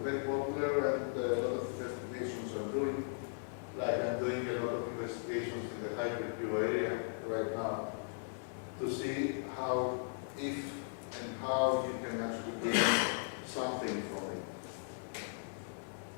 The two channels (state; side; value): silent; right; digital silence